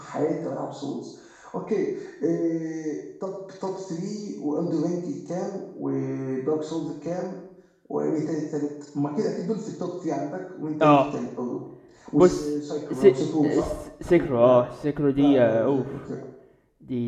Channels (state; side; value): identical; both; correlation 1.00